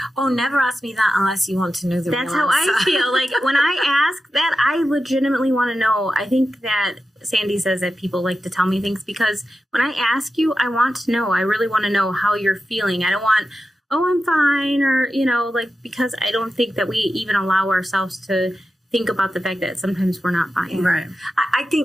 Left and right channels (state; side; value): normal; both; correlation 0.91